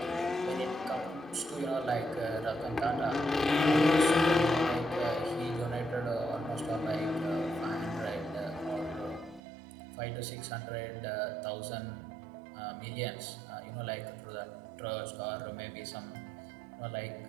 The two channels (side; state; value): left; drops out; at 9.4 s